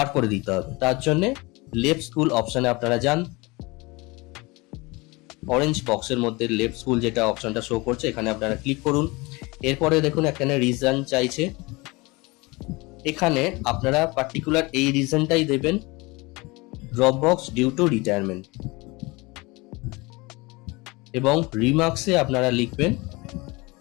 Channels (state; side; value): quieter; right; 24.7 dB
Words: করে দিতে হবে। তার জন্য লেফট স্কুল অপশনে আপনারা যান, অরেঞ্জ বক্সের মধ্যে লেফট স্কুল যেটা অপশনটা শো করছে এখানে আপনারা ক্লিক করুন। এরপরে দেখুন এখানে রিজন চাইছে, এখানে আপনারা পার্টিকুলার এই রিজনটাই দেবেন, drop box due to retirement. এবং রিমার্কসে আপনারা লিখবেন